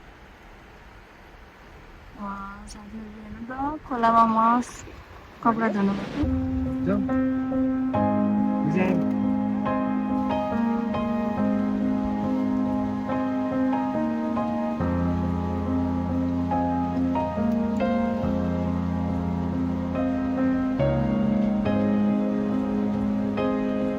साथीहरू हेर्नु त खोलामा मस कपडा धुनु जाऊ विजय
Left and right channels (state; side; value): identical; both; correlation 1.00